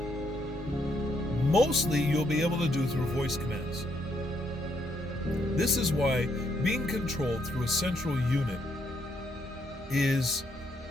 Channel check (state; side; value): normal; both; correlation 0.74